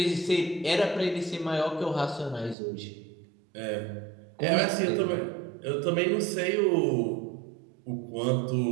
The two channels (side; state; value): left; drops out; at 2.6 s